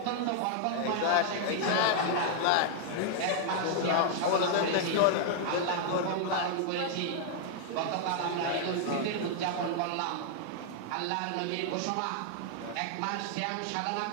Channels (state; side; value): different; both; correlation 0.00